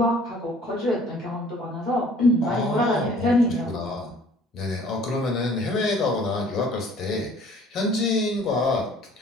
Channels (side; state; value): both; normal; correlation 0.53